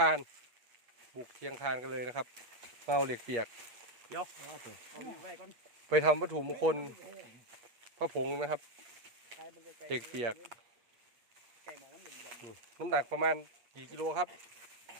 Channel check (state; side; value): late; left; 8.3 ms